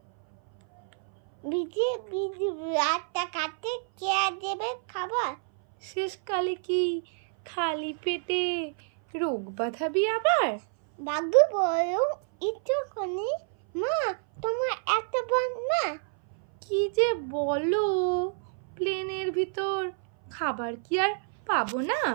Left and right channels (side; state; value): left; silent; 58 dB below the other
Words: বিজে বিজে রাতটা কাটে কে দেবে খাবার। শেষকালে কি খালি পেটে রোগ বাঁধাবি আবার। বাবু বলো একটুখানি মা তোমার একটা বোন না। কি যে বলো, প্লেনের ভিতর খাবার কি আর পাবো না।